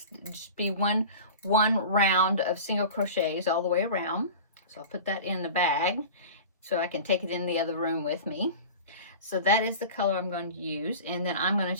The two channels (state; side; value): inverted; both; correlation -0.35